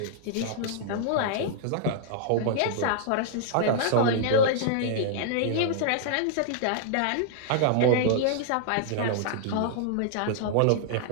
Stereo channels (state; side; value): different; both; correlation -0.01